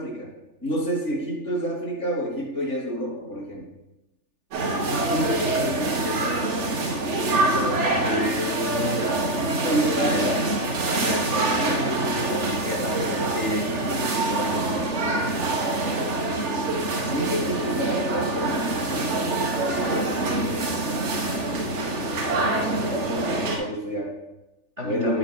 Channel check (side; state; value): left; late; 3.4 ms